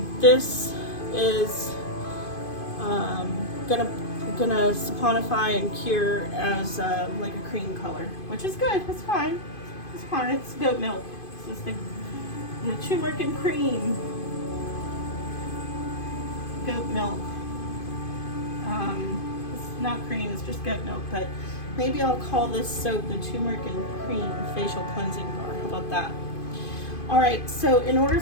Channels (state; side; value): late; right; 2.5 ms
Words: this is gonna saponify and cure as like a cream color, which is good. It's fine. It's fine. It's goat milk. This is the turmeric and cream goat milk. It's not cream. It's just goat milk. But maybe I'll call this soap the Turmeric and Cream Facial Cleansing Bar. How about that? All right. So in order